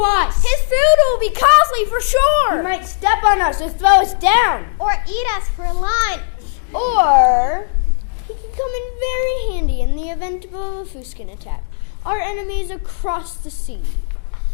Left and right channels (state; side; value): silent; right; digital silence